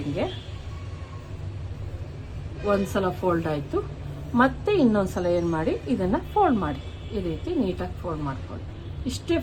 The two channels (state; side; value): identical; both; correlation 1.00